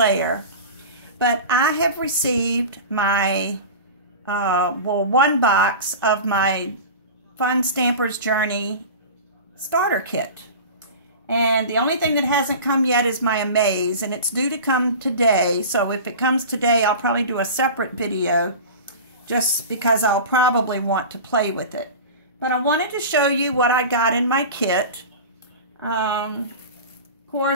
But I have received my, one box of my Fun Stamper's Journey starter kit. And the only thing that hasn't come yet is my Amaze, and it's due to come today. So if it comes today, I'll probably do a separate video just because I'll probably want to play with it. But I wanted to show you what I got in my kit. Of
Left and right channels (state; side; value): inverted; both; correlation -0.32